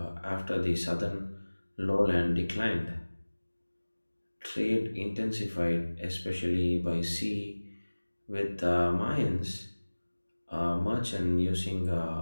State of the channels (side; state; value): both; inverted; correlation -1.00